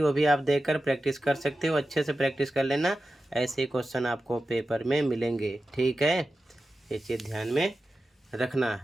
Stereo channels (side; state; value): both; normal; correlation 0.93